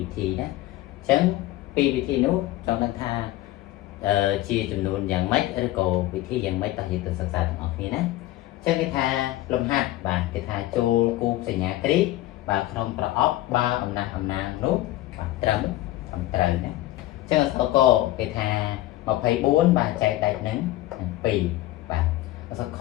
ិធីណាអញ្ចឹង2វិធីនោះចង់ដឹងថាជាចំនួនយ៉ាងម៉េចឬក៏វិធីយ៉ាងម៉េចតើយើងទៅសិក្សាទាំងអស់គ្នាណាអញ្ចឹងគេថាលំហាត់បាទគេថាចូលគូបសញ្ញាគ្រីបាទក្នុងប្រអប់បើអំណះអំណាងនោះបាទត្រឹមត្រូវណាអញ្ចឹងអក្សរកគេថា24បាទចែកដាច់នឹង2បាទអក្សរខ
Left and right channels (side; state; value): right; quieter; 16.1 dB